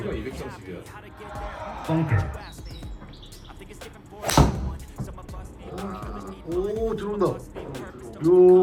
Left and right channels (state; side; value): identical; both; correlation 1.00